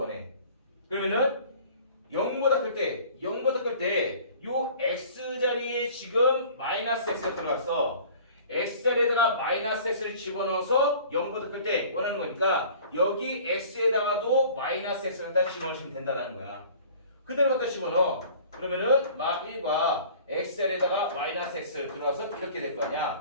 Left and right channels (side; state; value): both; inverted; correlation -0.48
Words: 그러면은 0보다 클 때 요 x 자리에 지금 마이너스 x가 들어갔어. x 자리에다가 마이너스 x를 집어넣어서 0보다 클 때 원하는 거니까 여기 x에다가도 마이너스 x를 갖다 집어넣으시면 된다는 거야. 그대로 갖다 집어넣어. 그러면은 마 1과 x 자리에다가 마이너스 x 들어와서 이렇게 될 거